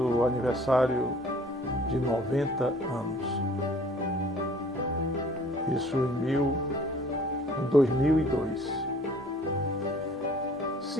aniversário de 90 anos. Isso em 2002.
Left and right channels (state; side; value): normal; both; correlation 0.53